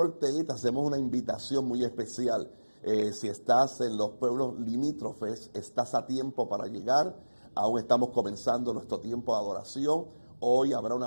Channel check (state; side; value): inverted; both; correlation -1.00